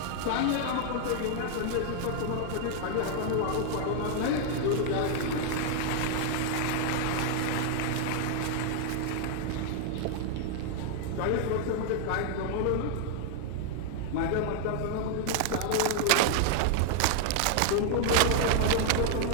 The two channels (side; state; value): both; different; correlation 0.00